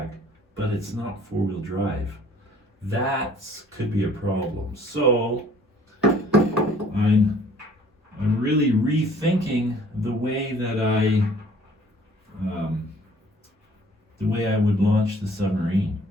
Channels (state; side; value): normal; both; correlation 0.55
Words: but it's not four-wheel drive. That could be a problem. So I'm really rethinking the way that I would launch the Submarine.